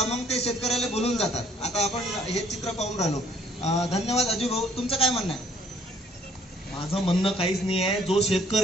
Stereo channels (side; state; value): both; normal; correlation 0.61